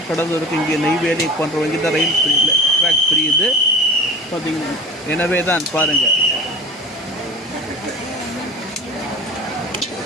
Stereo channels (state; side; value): normal; both; correlation 0.36